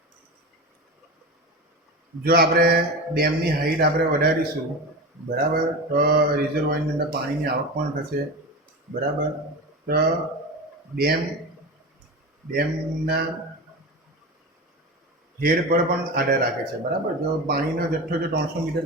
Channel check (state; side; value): normal; both; correlation 0.26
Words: જો આપણે ડેમની હાઈટ આપણે વધારીશું, બરાબર, તો રિઝર્વોયરની અંદર પાણીની આવક પણ થશે, બરાબર. તો ડેમના હેડ પર પણ આધાર રાખે છે, બરાબર. જો પાણીનો જથ્થો જો 300 મીટર